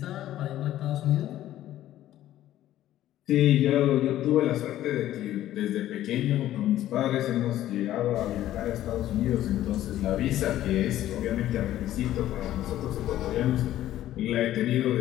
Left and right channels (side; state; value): right; quieter; 13.3 dB